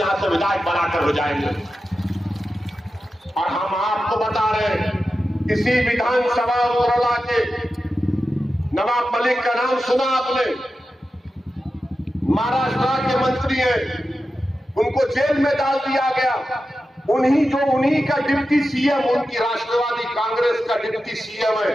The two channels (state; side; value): normal; both; correlation 0.92